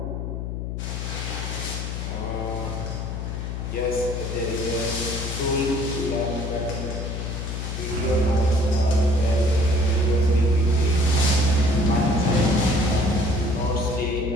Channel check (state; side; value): noise; left; hum, 4 dB below the sound